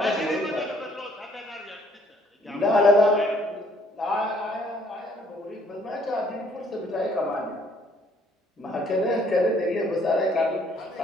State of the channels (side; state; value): both; normal; correlation 0.63